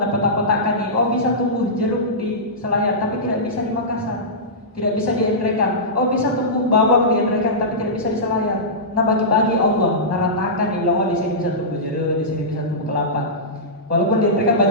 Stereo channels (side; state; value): both; normal; correlation -0.16